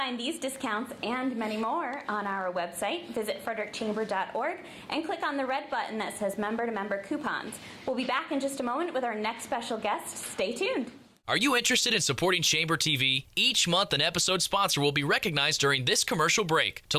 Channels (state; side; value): identical; both; correlation 1.00